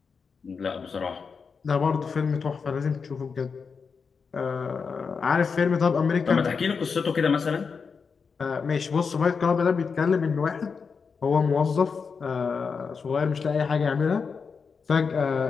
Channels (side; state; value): right; quieter; 5.5 dB